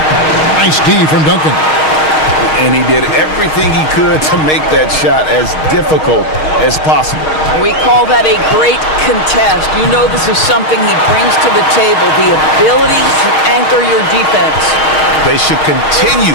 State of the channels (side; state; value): right; late; 6.4 ms